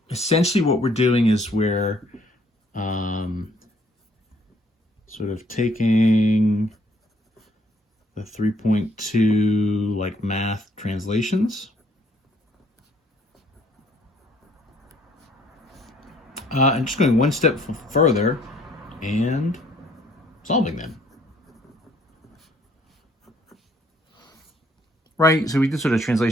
Essentially, what we're doing is we're sort of taking the 3.2 like math translations. And just going one step further and solving them. Right, so we did sort of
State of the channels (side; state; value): both; normal; correlation 0.63